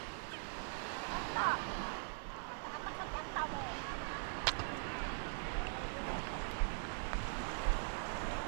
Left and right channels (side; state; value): left; silent; digital silence